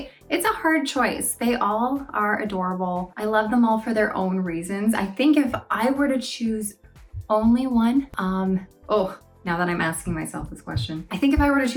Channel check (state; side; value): identical; both; correlation 1.00